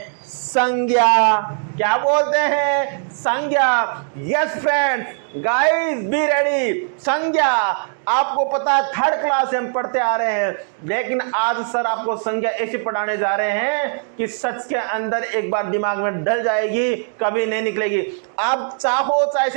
संज्ञा। क्या बोलते हैं? संज्ञा। Yes friends, guys be ready. संज्ञा, आपको पता है थर्ड क्लास से हम पढ़ते आ रहे हैं, लेकिन आज सर आपको संज्ञा ऐसे पढ़ाने जा रहे हैं कि सच के अंदर एक बार दिमाग में डल जाएगी, कभी नहीं निकलेगी। आप चाहो चाहे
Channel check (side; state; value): left; silent; digital silence